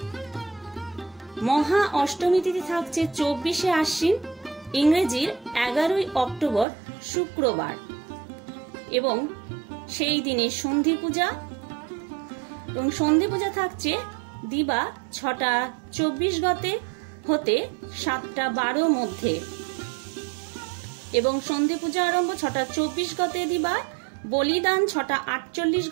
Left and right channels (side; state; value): left; drops out; at 6.7 s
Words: মহা অষ্টমী তিথি থাকছে 24শে আশ্বিন ইংরেজির 11ই অক্টোবর শুক্রবার এবং সেই দিনে সন্ধি পূজা এবং সন্ধি পূজা থাকছে দিবা 6টা 24 গতে হতে 7টা 12 মধ্যে এবং সন্ধি পূজা আরম্ভ 6টা 24 গতে দিবা, বলিদান 6টা 48